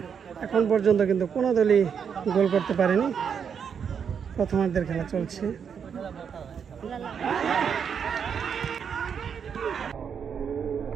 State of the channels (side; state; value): left; quieter; 7.2 dB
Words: এখন পর্যন্ত কিন্তু কোনো দলই গোল করতে পারেনি। প্রথমার্ধের খেলা চলছে।